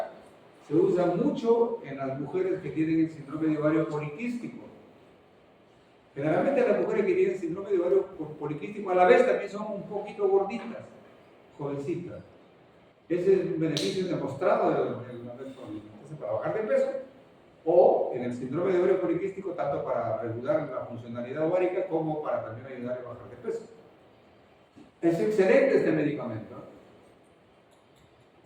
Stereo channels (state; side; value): identical; both; correlation 1.00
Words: se usa mucho en las mujeres que tienen el síndrome de ovario poliquístico. Generalmente las mujeres que tienen síndrome de ovario poliquístico a la vez también son un poquito gorditas, jovencitas. Ese es un beneficio demostrado de la metformina. Entonces, para bajar de peso, o en el síndrome de ovario poliquístico, tanto para regular la funcionalidad ovárica como para también ayudar a bajar de peso. Es excelente este medicamento.